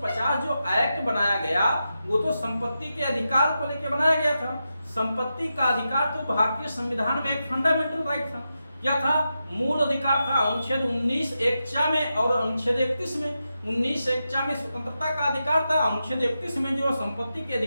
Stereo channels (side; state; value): both; inverted; correlation -0.88